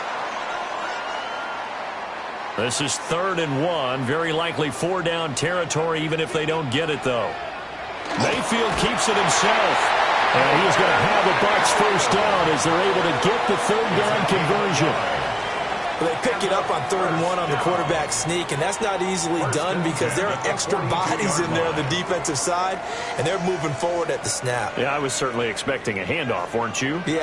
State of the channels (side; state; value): both; identical; correlation 1.00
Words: This is 3rd and 1. Very likely 4-down territory, even if they don't get it, though. Mayfield keeps it himself. And he's going to have the Bucs first down as they're able to get the 3rd down conversion. Well, they pick it up on 3rd and 1 on the quarterback sneak, and that's not easily done because there are extra bodies in there on the defensive side, and they're moving forward at the snap. Yeah, I was certainly expecting a handoff, weren't you?